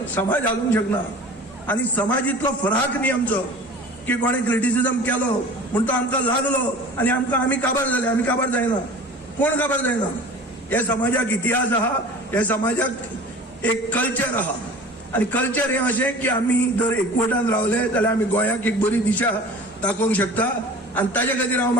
समाज हालूंक शकना. आनी समाज इतलो फराक न्ही आमचो की कोणें क्रिटिसिजम केलो म्हूण तो आमकां लागलो आनी आमी काबार जाले. आमी काबार जायना, कोण काबार जायना. हे समाजाक इतिहास आहा, हे समाजाक एक कल्चर आहा. आनी कल्चर हें अशें की आमी जर एकवटान रावले जाल्यार आमी गोंयाक एक बरी दिशा दाखोवंक शकता. आनी ताजे खातीर हांव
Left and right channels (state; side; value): normal; both; correlation 0.40